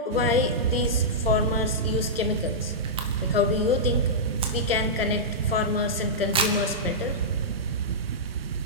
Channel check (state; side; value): normal; both; correlation -0.13